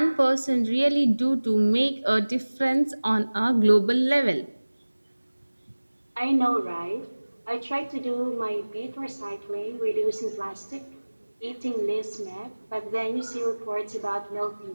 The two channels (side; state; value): both; inverted; correlation -1.00